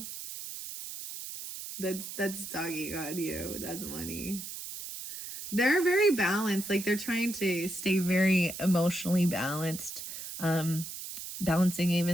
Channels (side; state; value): right; noise; hiss, 9 dB below the sound